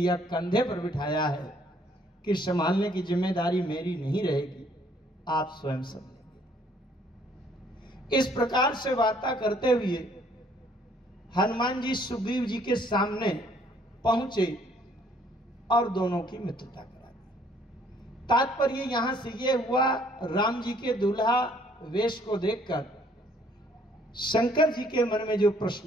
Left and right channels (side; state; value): both; normal; correlation 0.62